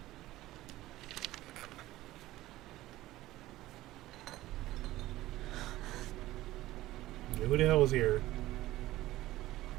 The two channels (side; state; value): left; quieter; 16.4 dB